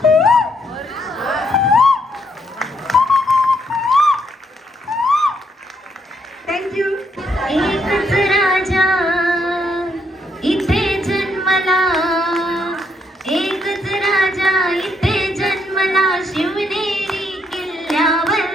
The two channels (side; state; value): both; normal; correlation 0.74